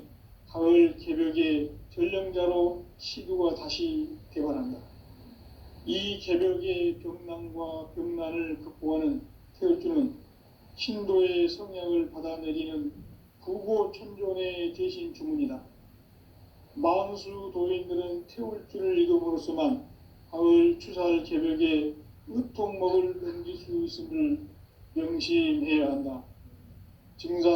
가을 개벽의 전령자로 시두가 다시 대발한다. 이 개벽의 병난과 병난을 극복하는 태울주는 신도의 성약을 받아내리는 부고천존의 대신 주문이다. 만수 도인들은 태울주를 읽음으로써만 가을 추살 개벽의 의통목을 넘길 수 있음을 명심해야 한다.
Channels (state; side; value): identical; both; correlation 1.00